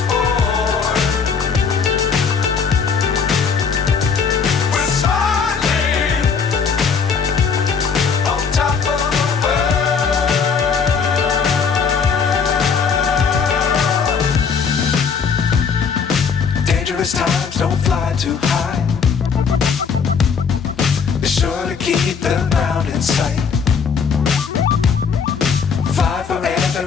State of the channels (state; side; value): quieter; right; 6.0 dB